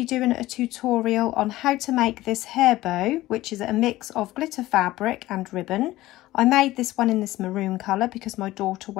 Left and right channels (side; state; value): right; quieter; 16.7 dB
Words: doing a tutorial on how to make this hair bow, which is a mix of glitter fabric and ribbon. I made this one in this maroon colour because my daughter